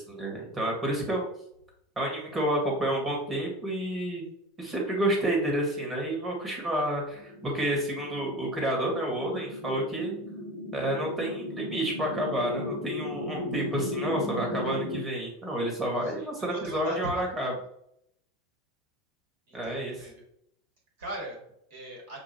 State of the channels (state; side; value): normal; both; correlation 0.33